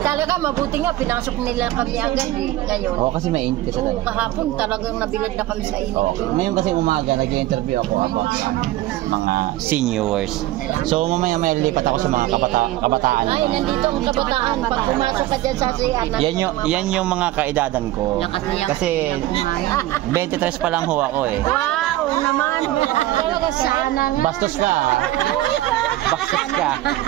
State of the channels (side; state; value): left; quieter; 15.7 dB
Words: mabuti nga, pinasok nila kami agad ngayon. Oo, kasi mainit kasi. Oo, kahapon talagang nabilad na kami sa inyo. Okay. Ngayon kasi umaga, nag-interview ako about mga seniors. So mamaya may lilipat ako sa mga kabataan. Ay, nandito ang kabataan. Pag pumasok ka dyan sa CR, Yan yung mga kaedadan ko. Kasi 23 pa lang ho ako eh. wow naman. Talaga sana nga. Bastos ka. Bastos ka.